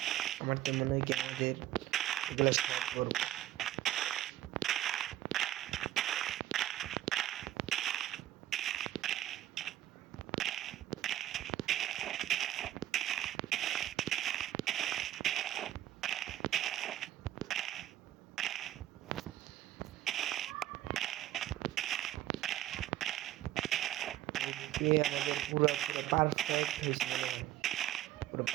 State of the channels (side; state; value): left; quieter; 13.2 dB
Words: আমার তো মনে হয় কি আমাদের এগুলো স্টার্ট করবো। আমাদের পুরো পারফেক্ট হয়েছে, পুরো